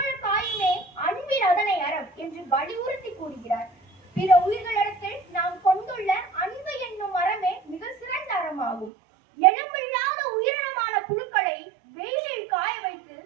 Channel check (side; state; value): left; drops out; at 8.9 s